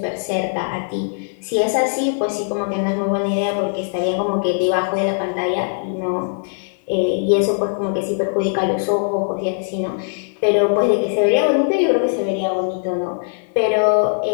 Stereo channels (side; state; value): right; silent; 66 dB below the other